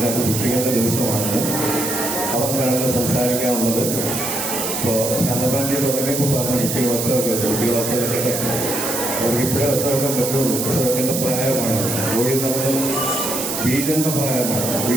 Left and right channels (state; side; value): noise; right; hiss, 3 dB below the sound